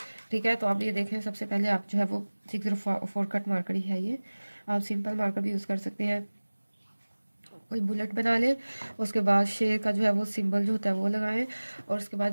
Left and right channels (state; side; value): inverted; both; correlation -1.00